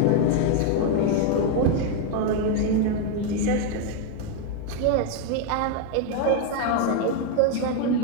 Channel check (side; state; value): both; different; correlation 0.01